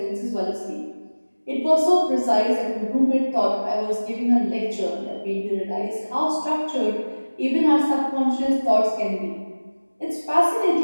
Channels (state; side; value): inverted; both; correlation -1.00